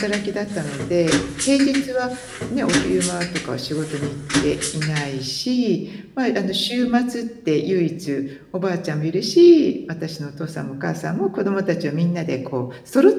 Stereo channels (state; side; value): identical; both; correlation 1.00